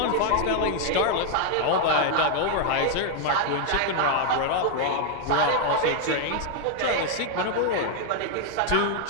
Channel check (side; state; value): both; different; correlation 0.00